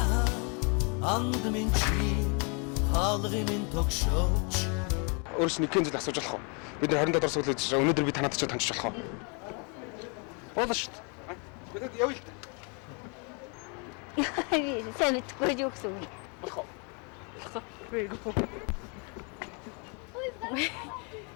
Өөрөөс нэгэн зүйл асууж болох уу? Бид нар 27 дор суулж байгаа. Өнөөдөр би танаад ч таньж болох уу? Болно шүү дээ. Бид явъя л да. Сайн мэдгүй юу гэсэн үг. Болох уу?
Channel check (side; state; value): right; quieter; 35.1 dB